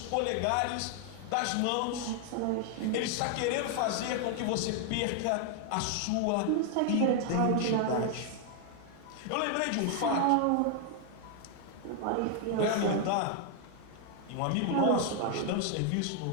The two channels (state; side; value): different; both; correlation 0.00